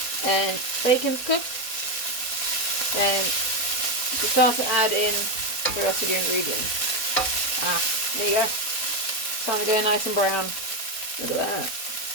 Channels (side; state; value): right; late; 4.2 ms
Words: and bacon's cooked, then you start to add in the rest of your ingredients. There you go. It's starting to go nice and brown. Look at that.